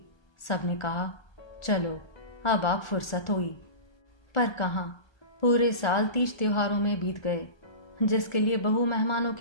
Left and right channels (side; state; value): right; late; 1.3 ms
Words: सबने कहा चलो अब आप फुर्सत हुई, पर कहाँ, पूरे साल 30 त्योहारों में बीत गए, जिसके लिए बहू मेहमानों